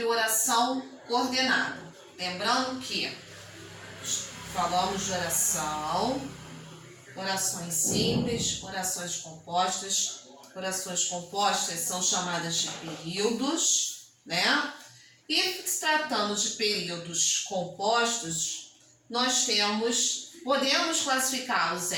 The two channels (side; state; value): both; identical; correlation 1.00